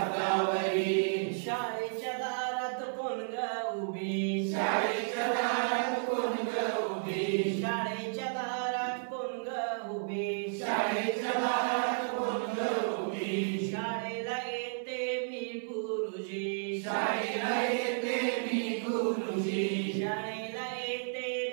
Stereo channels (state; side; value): silent; left; 56 dB below the other